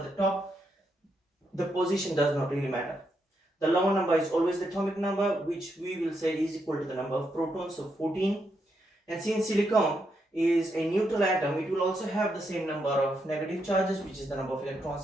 the top. The position does not really matter. The lower number is always the atomic number, which we will say is equal to the number of protons, so 14. And since silicon is a neutral atom, it will also have the same number of negative charges, which is the number of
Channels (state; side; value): normal; both; correlation 0.80